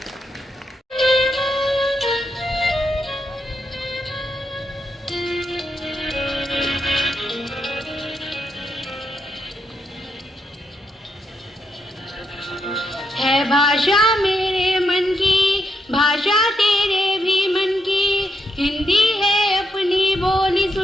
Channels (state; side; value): normal; both; correlation 0.81